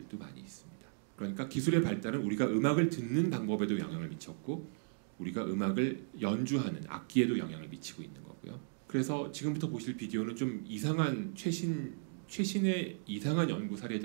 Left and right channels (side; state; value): left; silent; digital silence